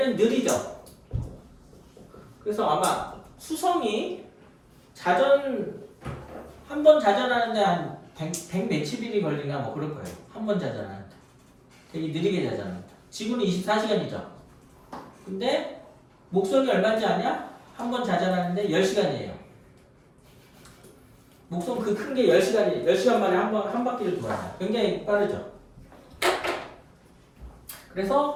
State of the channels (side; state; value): both; identical; correlation 1.00